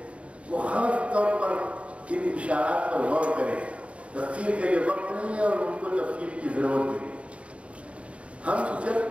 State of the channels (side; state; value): left; late; 0.062 ms